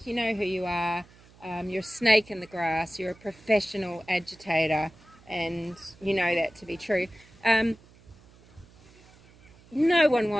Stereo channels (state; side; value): noise; right; hum, 26 dB below the sound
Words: You know who you are. You're a snake in the grass. You're a professional agitator, and you know that to be true. No one